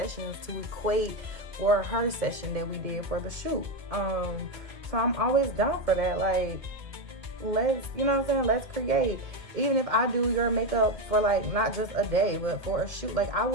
to equate for her session that we did for the shoot. So I'm always down for that. Like, let's, you know what I'm saying? Let's create. Even if I do your makeup for, like, not just a day, but for a shoot, like, I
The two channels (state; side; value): late; left; 1.9 ms